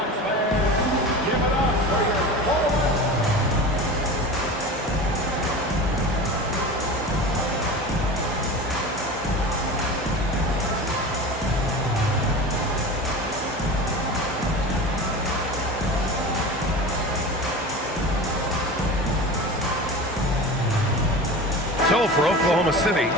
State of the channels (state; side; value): normal; both; correlation 0.32